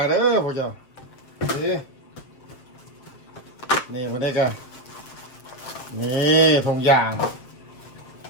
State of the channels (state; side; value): late; right; 7.6 ms